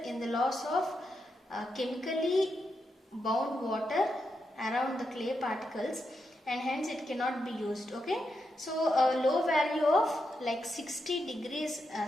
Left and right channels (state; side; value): normal; both; correlation 0.85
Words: in the loss of chemically bound water around the clay particles, and hence it cannot be used. Okay, so a low value of like 60 degrees